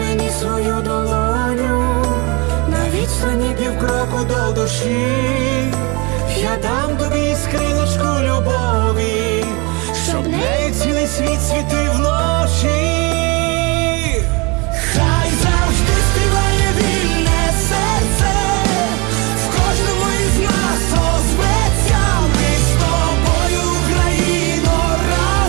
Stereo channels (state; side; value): quieter; left; 28.5 dB